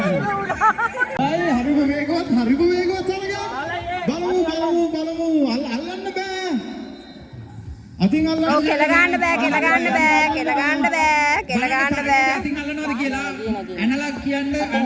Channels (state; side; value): identical; both; correlation 1.00